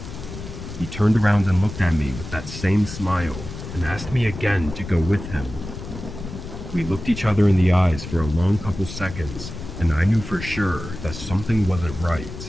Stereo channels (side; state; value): left; noise; rumble, 10 dB below the sound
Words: He turned around and looked at me with that same smile and asked me again to go with him. We looked each other in the eyes for a long couple seconds, and I knew for sure that something wasn't